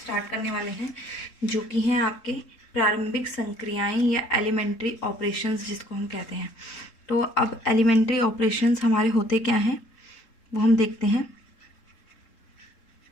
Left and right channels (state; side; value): late; right; 3.8 ms